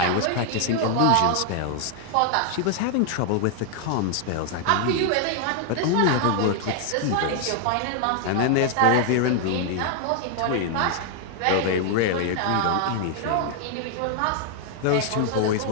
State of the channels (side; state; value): both; different; correlation 0.00